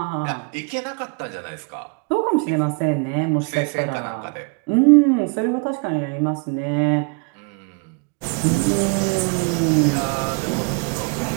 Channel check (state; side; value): quieter; left; 34.4 dB